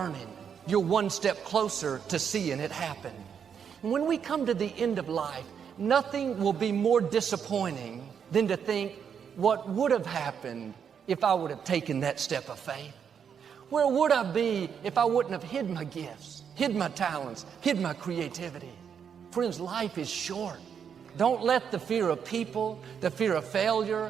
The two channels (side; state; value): left; quieter; 7.5 dB